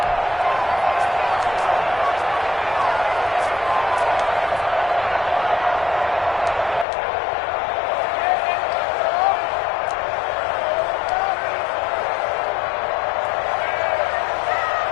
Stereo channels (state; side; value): drops out; right; at 6.9 s